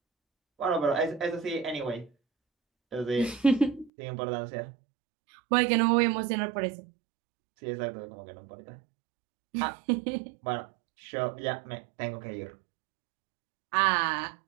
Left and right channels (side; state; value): left; drops out; at 3.9 s